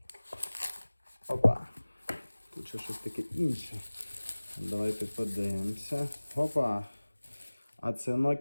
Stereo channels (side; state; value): both; inverted; correlation -1.00